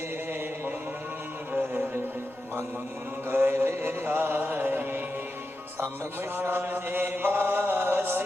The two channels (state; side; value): noise; right; rumble, 30 dB below the sound